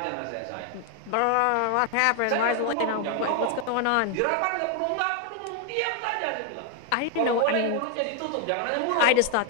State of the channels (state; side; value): different; both; correlation 0.01